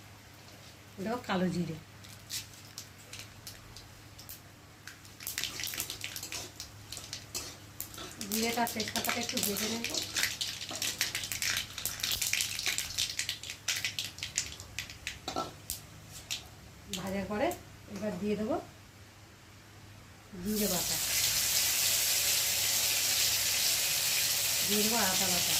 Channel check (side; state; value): both; identical; correlation 1.00